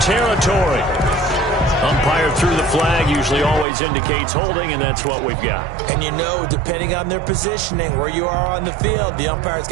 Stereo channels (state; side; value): drops out; left; at 3.7 s